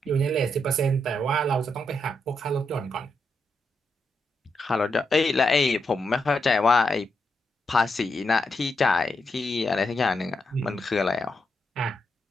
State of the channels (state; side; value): normal; both; correlation 0.82